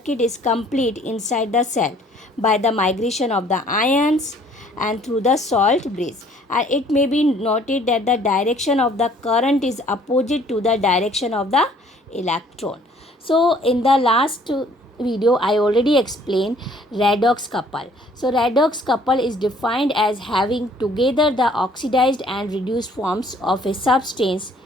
is complete inside the cell by the migration of the ions and through the salt bridge. And it may be noted that the direction of the current is opposite to the direction of the electron. So in the last video I already explained redox couple. So redox couple is defined as having together the oxidized and reduced forms of a substance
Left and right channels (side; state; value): both; normal; correlation 0.58